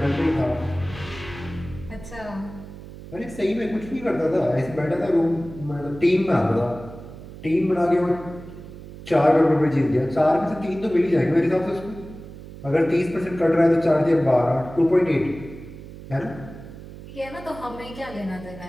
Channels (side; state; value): right; noise; hum, 15 dB below the sound